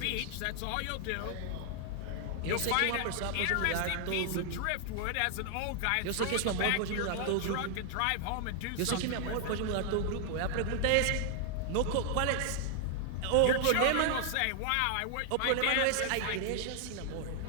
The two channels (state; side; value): different; both; correlation 0.00